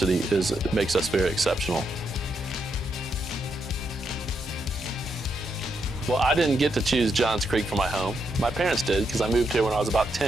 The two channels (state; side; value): normal; both; correlation 0.80